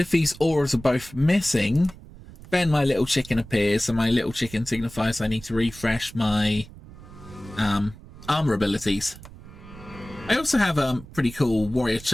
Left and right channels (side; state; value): right; noise; rumble, 18 dB below the sound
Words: these auras are both missing, then my little chicken appears, and my little chicken signifies I need to refresh my armor abilities. I also have a pretty cool warrior